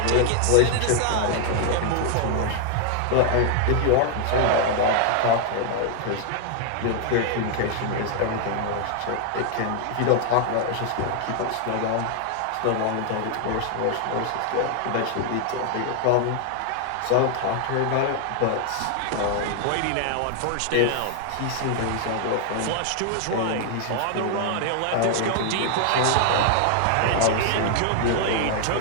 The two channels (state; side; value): different; both; correlation 0.00